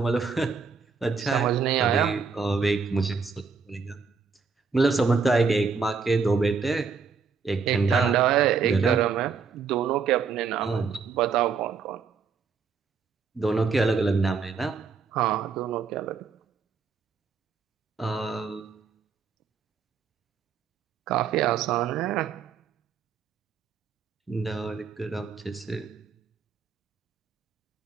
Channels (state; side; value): quieter; left; 5.4 dB